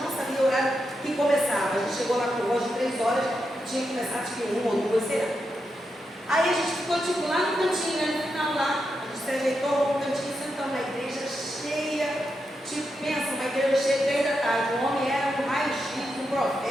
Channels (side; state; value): both; normal; correlation 0.85